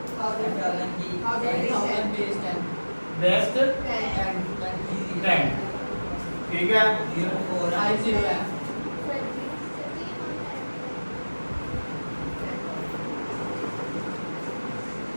base 10, ठीक है।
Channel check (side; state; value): both; inverted; correlation -1.00